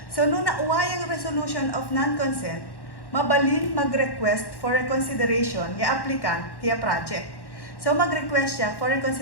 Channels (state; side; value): late; right; 1.1 ms